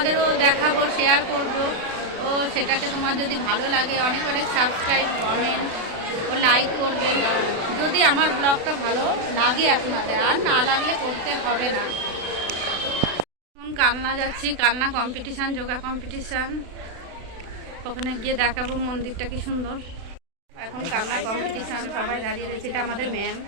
দেখাবো, শেয়ার করবো। ও সেটাকে তোমার যদি ভালো লাগে অনেক অনেক সাবস্ক্রাইব, কমেন্ট ও লাইক করবেন, যদি আমার ব্লগটা ভালো লাগে আপনাদের, আর না লাগলে করতে হবে না। এখন কালনা যাচ্ছি, কালনা কম্পিটিশান, যোগা কম্পিটিশান। ওখানে গিয়ে দেখাবো মন্দিরটা কি সুন্দর। এখন কালনা কম্পিটিশান, সবাই দাঁড়িয়ে রয়েছে। এটা আমাদের ম্যাম।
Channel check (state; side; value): late; left; 36 ms